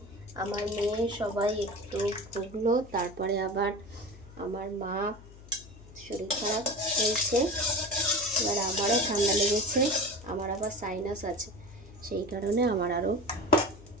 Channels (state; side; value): noise; left; hum, 19 dB below the sound